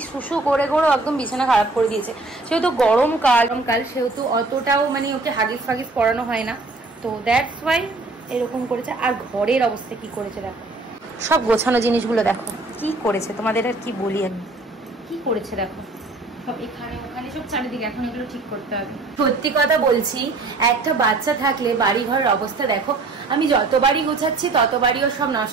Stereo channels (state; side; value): quieter; left; 3.3 dB